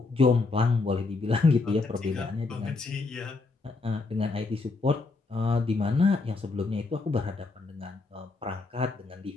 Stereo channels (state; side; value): quieter; right; 3.8 dB